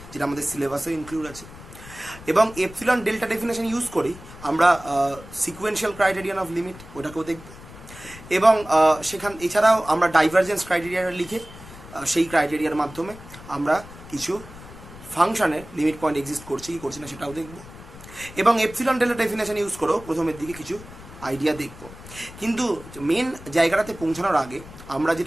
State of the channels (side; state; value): left; noise; rumble, 17 dB below the sound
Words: যেটা আমাদের সিলেবাসে ইনক্লুড আছে। এবং এপসিলন ডেল্টা ডেফিনেশন ইউজ করি আমরা সিকুয়েন্সিয়াল ক্রাইটেরিয়ান অফ লিমিট ওটাকেও দেখব, এবং এছাড়াও আমরা ডাইভারজেন্স ক্রাইটেরিয়াটা লিখে সেই ক্রাইটেরিয়ার মাধ্যমে আমরা কিছু ফাংশনের লিমিট পয়েন্ট এক্সিস্ট করছে কি করছে না সেটাও দেখব, এবং এপসিলন ডেল্টা ডেফিনেশন ইউজ করেও প্রথমের দিকে কিছু আইডিয়া দেখব। কিন্তু মেন জায়গাটাতে পৌঁছানোর আগে আমরা